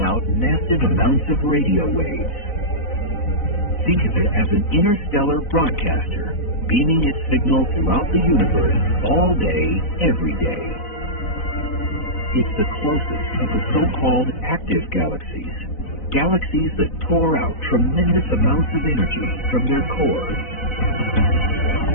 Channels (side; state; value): right; late; 4.0 ms